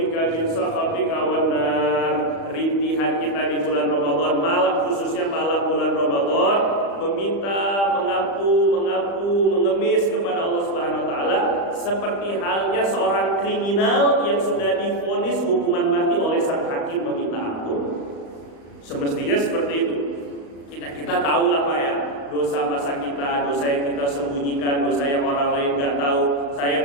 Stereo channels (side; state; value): right; late; 35 ms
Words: min sakhatika wan nar. Rintihan kita di bulan Ramadan, malam khususnya malam bulan Ramadan, meminta, mengampu, mengemis kepada Allah Subhanahu wa taala seperti halnya seorang kriminal yang sudah divonis hukuman mati oleh sang hakim meminta ampun. Semestinya seperti itu. Kita tahu lah Pak ya, dosa masa kita, dosa yang kita sembunyikan, dosa yang orang lain nggak tahu. Saya